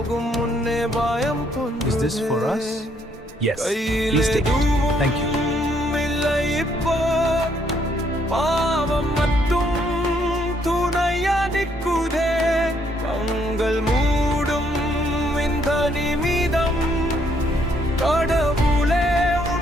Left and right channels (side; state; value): both; normal; correlation 0.70